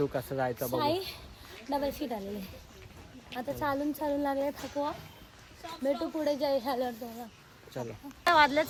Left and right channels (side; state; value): both; identical; correlation 1.00